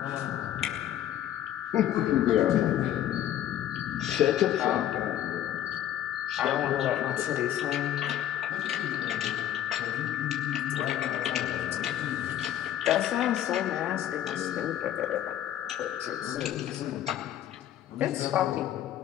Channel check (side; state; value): right; quieter; 11.6 dB